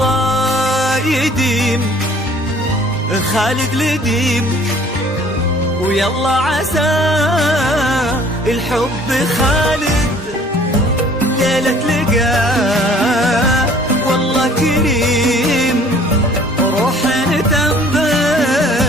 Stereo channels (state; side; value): normal; both; correlation 0.54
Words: يديم خالد لديم، ويلا عسى الحب خالد ليلة لقاه والله كريم، روح